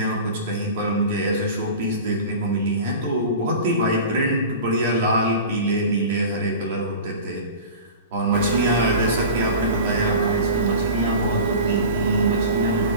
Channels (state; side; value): inverted; both; correlation -0.35